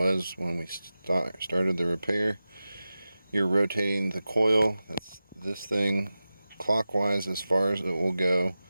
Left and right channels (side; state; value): both; inverted; correlation -0.94